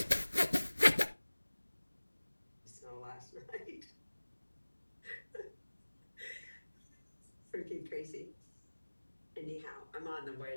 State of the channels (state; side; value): inverted; both; correlation -1.00